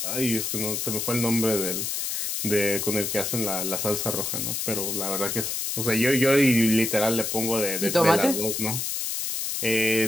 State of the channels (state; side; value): noise; left; hiss, 2 dB below the sound